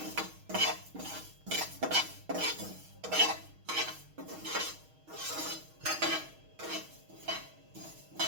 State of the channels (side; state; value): left; late; 6.4 ms